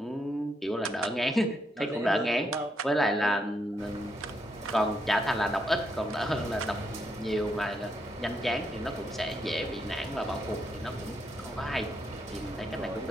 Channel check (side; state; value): both; normal; correlation 0.78